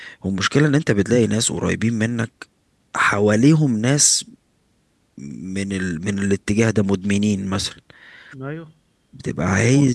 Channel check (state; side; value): identical; both; correlation 1.00